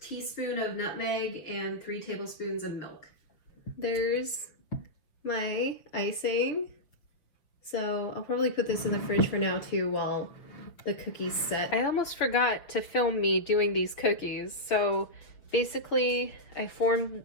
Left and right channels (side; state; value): right; late; 6.5 ms